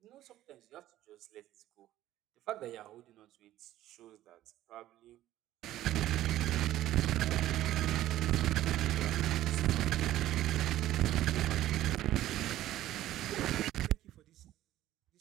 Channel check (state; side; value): quieter; left; 14.0 dB